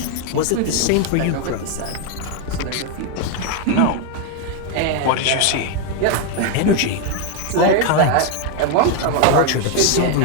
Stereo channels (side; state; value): both; different; correlation 0.01